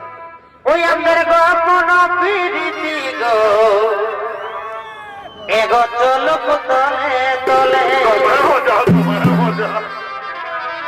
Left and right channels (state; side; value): identical; both; correlation 1.00